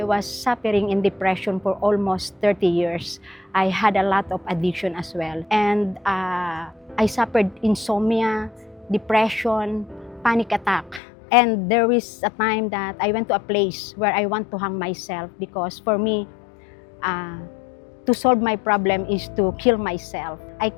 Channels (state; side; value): drops out; right; at 11.0 s